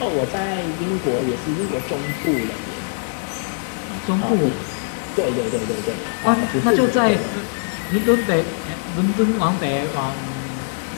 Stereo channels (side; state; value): right; silent; digital silence